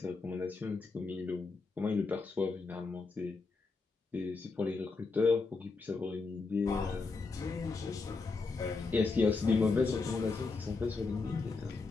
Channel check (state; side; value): quieter; right; 4.1 dB